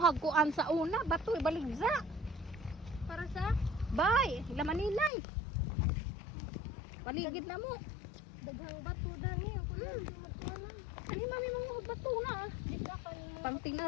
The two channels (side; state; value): right; drops out; at 5.1 s